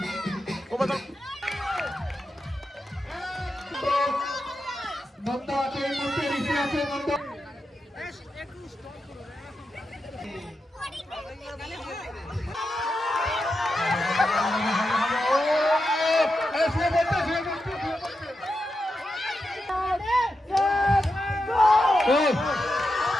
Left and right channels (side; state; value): both; normal; correlation 0.88